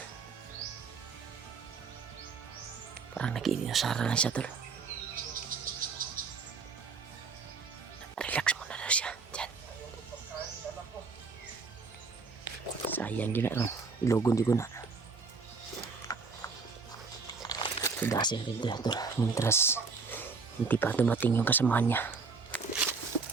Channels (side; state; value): left; quieter; 4.7 dB